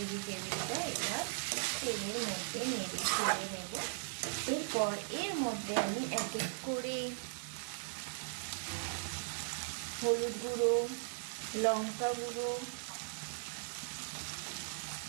এবার তেলের মধ্যে নেড়ে ছেড়ে নেব। এরপর এর মধ্যে আমি এক এক করে হলুদ গুঁড়ো, লঙ্কা গুঁড়ো,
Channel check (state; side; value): silent; left; digital silence